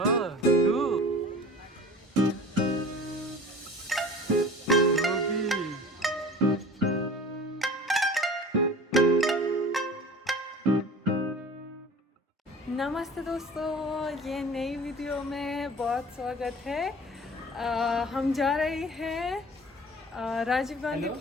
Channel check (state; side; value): normal; both; correlation 0.42